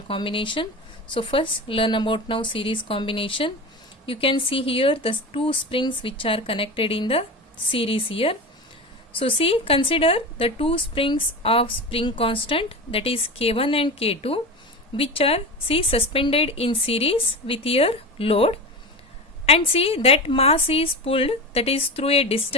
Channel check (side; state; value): both; normal; correlation 0.26